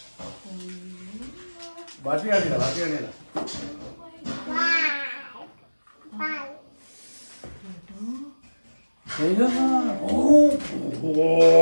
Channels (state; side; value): inverted; both; correlation -1.00